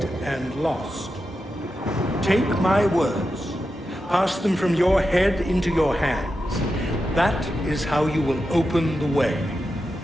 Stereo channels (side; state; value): both; normal; correlation 0.89